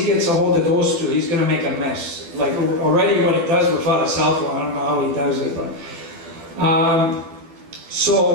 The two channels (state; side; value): late; left; 12 ms